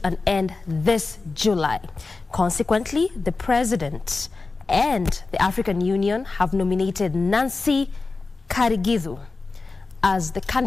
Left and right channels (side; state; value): right; quieter; 3.9 dB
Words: an end this July. Consequently, the President and the African Union have nominated Nancy Karigithu as the